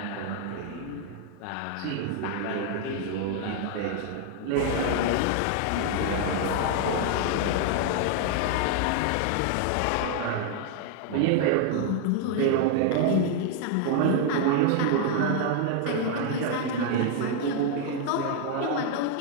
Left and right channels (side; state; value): both; different; correlation 0.00